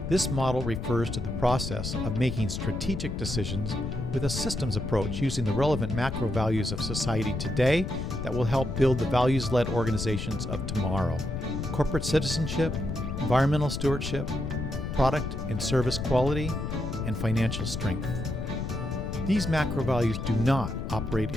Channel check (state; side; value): noise; left; rumble, 4 dB below the sound